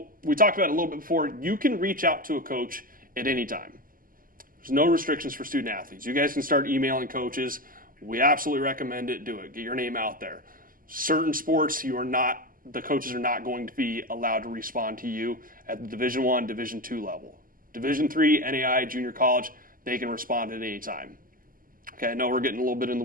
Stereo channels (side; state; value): left; late; 0.41 ms